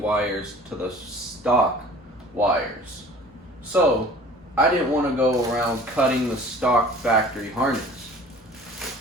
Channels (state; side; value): normal; both; correlation 0.46